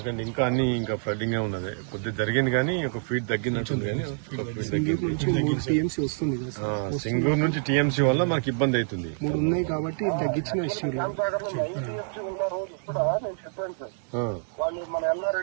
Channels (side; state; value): left; silent; digital silence